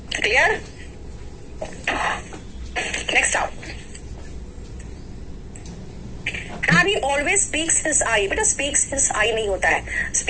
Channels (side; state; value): both; identical; correlation 1.00